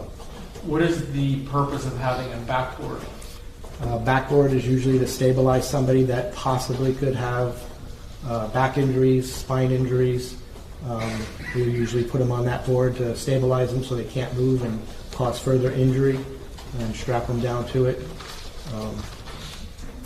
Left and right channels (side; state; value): both; identical; correlation 1.00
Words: What is the purpose of having a backboard? Backboard is usually to stabilize somebody that possibly could have back injuries, spine injuries. We usually put them on that board to stabilize them so they can't move and cause further injury, and strap them down to it.